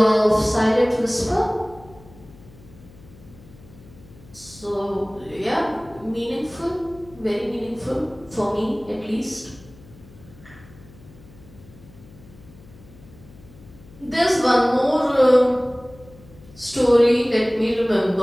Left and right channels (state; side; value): noise; left; hum, 22 dB below the sound